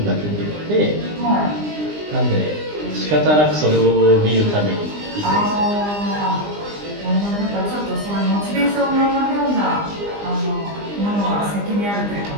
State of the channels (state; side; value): late; left; 20 ms